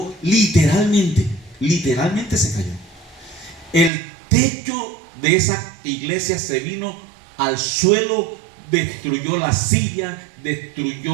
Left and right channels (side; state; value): left; drops out; at 3.9 s